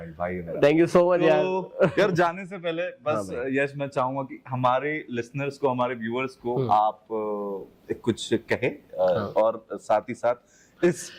भाई है मेरा। थैंक यू सो मच यार। यार जाने से पहले बस यश मैं चाहूंगा कि हमारे लिसनर्स को, हमारे व्यूअर्स को आप कुछ कहे और साथ ही साथ इस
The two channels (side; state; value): both; identical; correlation 1.00